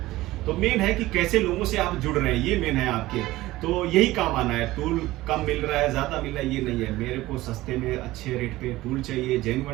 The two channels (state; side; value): quieter; left; 17.5 dB